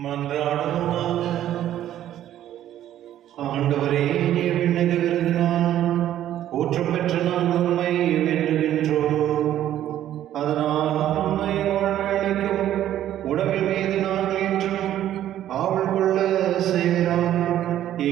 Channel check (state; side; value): quieter; left; 12.0 dB